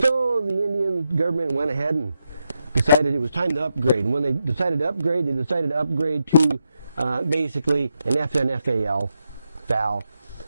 the Indian government went ahead and decided it was time to upgrade. And when they decided to upgrade, to basically an FN FAL,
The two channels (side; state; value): both; inverted; correlation -0.85